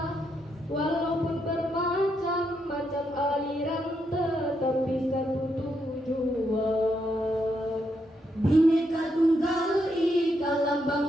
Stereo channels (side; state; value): both; normal; correlation 0.79